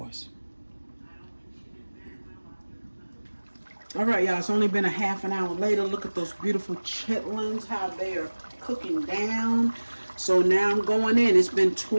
All right, y'all, it's only been a half an hour later. Look at those beautiful chitlins, how they are cooking down. So now I'm going in. It's been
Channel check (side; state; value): both; inverted; correlation -1.00